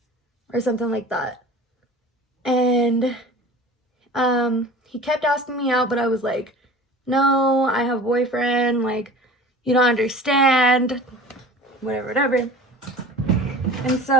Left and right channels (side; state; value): both; normal; correlation 0.41